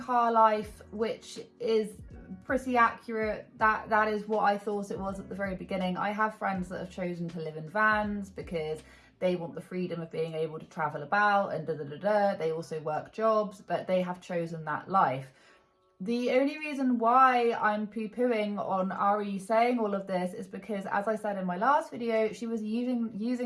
life, which is pretty accurate. That is what I thought it was at the very beginning. I have friends that have chosen to live in vans because they want the freedom of being able to travel about and They also work jobs, but they have chosen that life. The only reason why I'm poo-pooing on Ari saying all of this is because, as I said in my last video, she was using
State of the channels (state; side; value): identical; both; correlation 1.00